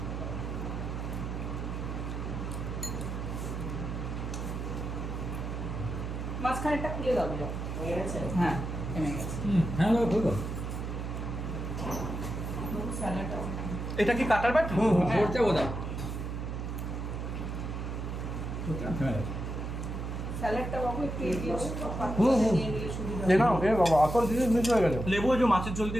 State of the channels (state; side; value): noise; right; hum, 4 dB below the sound